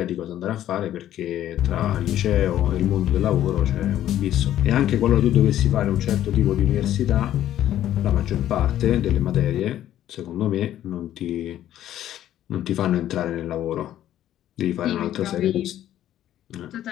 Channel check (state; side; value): quieter; right; 12.1 dB